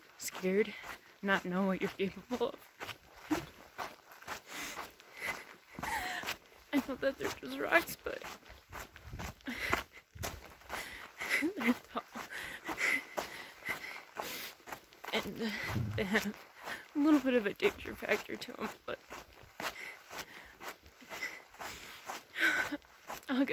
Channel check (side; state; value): both; identical; correlation 1.00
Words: scared, not know what you're capable of. I know that they're just rocks, but they're tall. And they have a little bit of a danger factor to them, but I'll